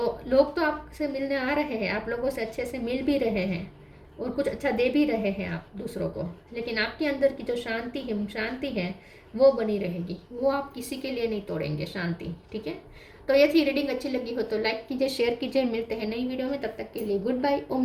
लोग तो आपसे मिलने आ रहे हैं, आप लोगों से अच्छे से मिल भी रहे हैं और कुछ अच्छा दे भी रहे हैं आप दूसरों को, लेकिन आपके अंदर की जो शांति है वो बनी रहेगी, वो आप किसी के लिए नहीं तोड़ेंगे शांति। ठीक है, तो ये थी रीडिंग। अच्छी लगी हो तो लाइक कीजिए, शेयर कीजिए। मिलते हैं नई वीडियो में, तब तक के लिए गुड बाय।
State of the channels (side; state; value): both; identical; correlation 1.00